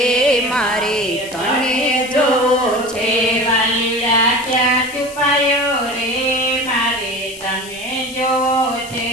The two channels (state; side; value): noise; left; hiss, 16 dB below the sound